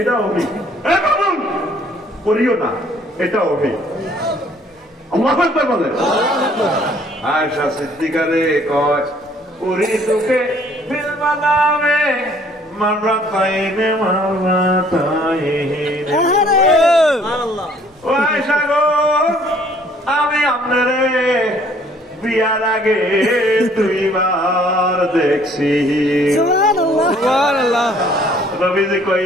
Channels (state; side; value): normal; both; correlation 0.59